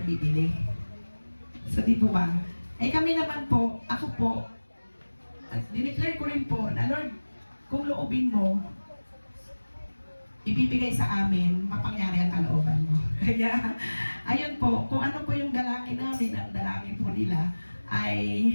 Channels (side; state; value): both; inverted; correlation -1.00